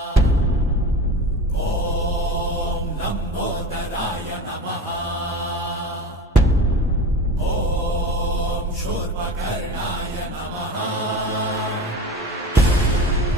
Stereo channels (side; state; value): both; normal; correlation 0.34